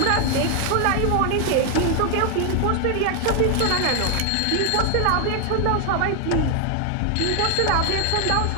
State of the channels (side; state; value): both; different; correlation 0.00